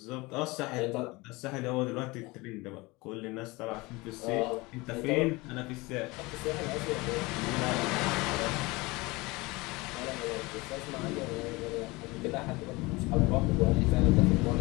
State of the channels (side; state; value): right; quieter; 23.4 dB